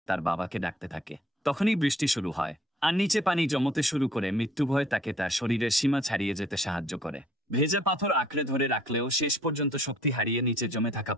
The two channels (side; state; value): both; normal; correlation 0.59